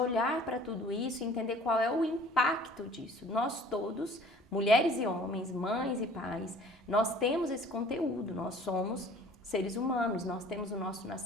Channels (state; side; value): normal; both; correlation 0.51